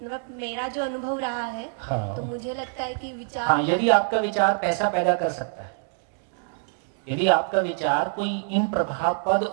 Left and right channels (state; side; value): silent; left; digital silence